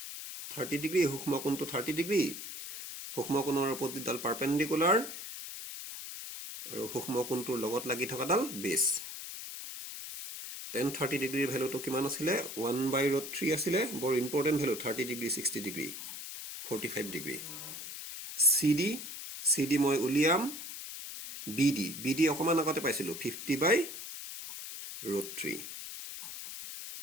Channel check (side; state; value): left; noise; hiss, 9 dB below the sound